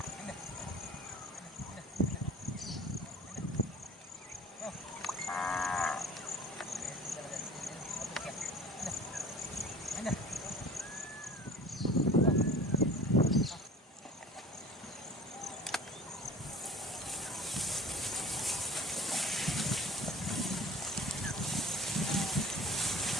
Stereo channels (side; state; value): both; normal; correlation 0.44